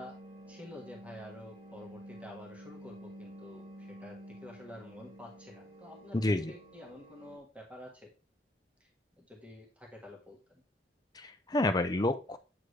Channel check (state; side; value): normal; both; correlation 0.67